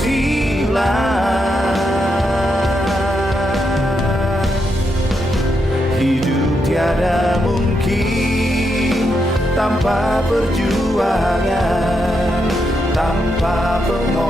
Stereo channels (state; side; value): normal; both; correlation 0.82